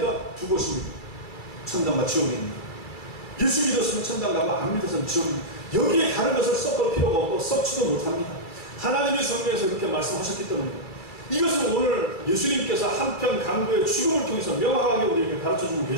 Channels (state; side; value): late; right; 2.3 ms